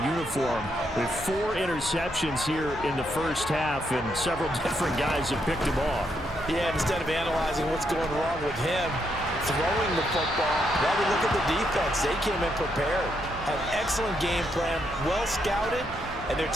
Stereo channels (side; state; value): both; normal; correlation 0.78